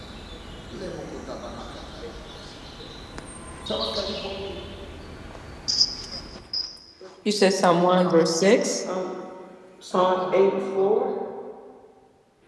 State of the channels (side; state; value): both; identical; correlation 1.00